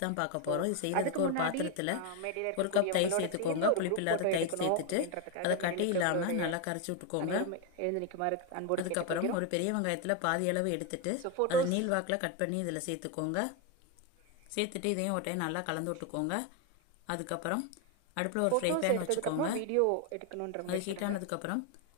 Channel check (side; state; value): both; different; correlation 0.02